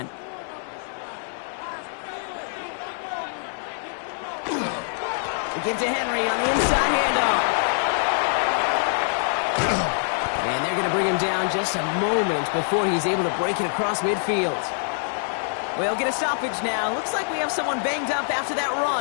We give to Henry on the inside handoff. And they're going to bring him down just a moment before he's able to break it across midfield. We'll get a stoppage now. Looks like we have someone banged up after that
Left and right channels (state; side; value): silent; right; 60 dB below the other